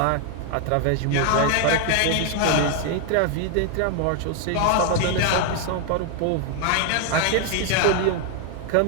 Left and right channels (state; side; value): different; both; correlation 0.00